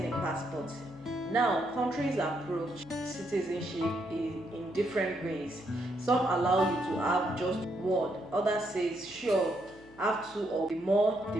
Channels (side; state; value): left; noise; hum, 25 dB below the sound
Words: a passport. Now, countries approach citizenship in different ways. Some allow you to have just one, others says sure, have two, or the more the